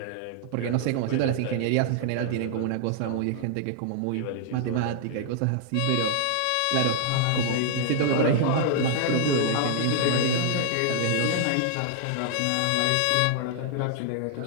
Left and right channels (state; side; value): different; both; correlation -0.01